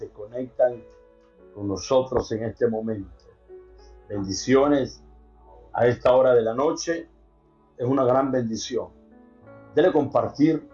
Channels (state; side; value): identical; both; correlation 1.00